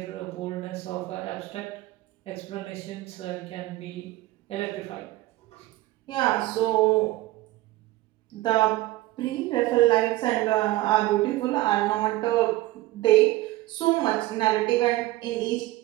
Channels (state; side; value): quieter; left; 17.8 dB